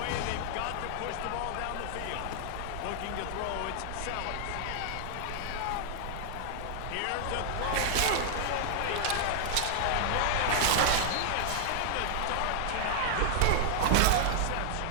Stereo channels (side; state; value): both; different; correlation -0.01